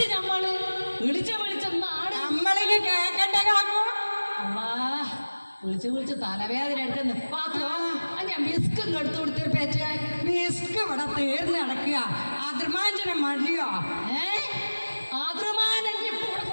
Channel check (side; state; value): both; inverted; correlation -1.00